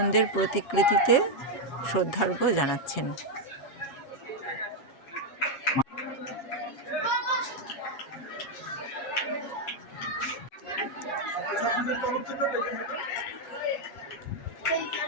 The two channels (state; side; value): late; right; 7.3 ms